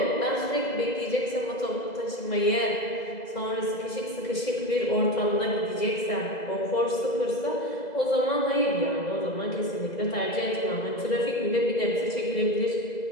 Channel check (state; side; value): late; right; 2.0 ms